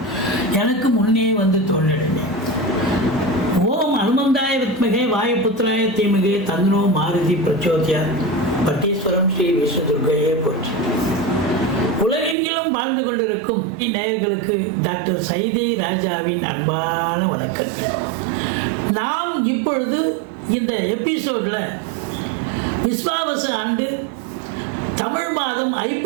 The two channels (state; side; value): drops out; left; at 12.4 s